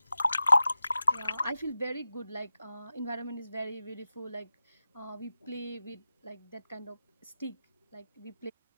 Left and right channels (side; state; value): both; inverted; correlation -0.93